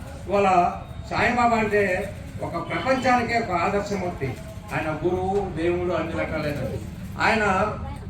ఇవాళ సాయిబాబా అంటే ఒక ప్రపంచానికే ఒక ఆదర్శమూర్తి. ఆయన గురువు, దేవుడు, అన్ని రకాలైనది. ఆయన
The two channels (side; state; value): both; identical; correlation 1.00